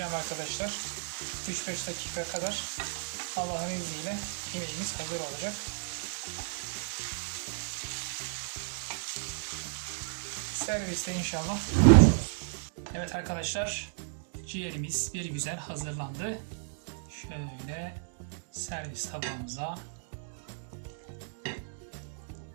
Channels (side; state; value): left; silent; digital silence